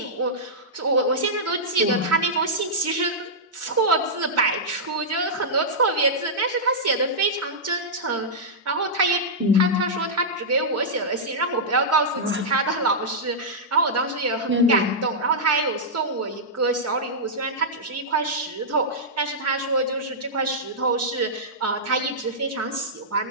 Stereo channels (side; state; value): both; normal; correlation -0.12